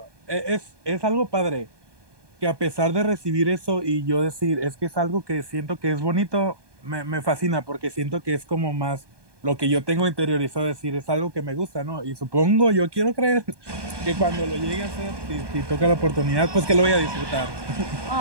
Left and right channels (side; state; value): left; late; 1.2 ms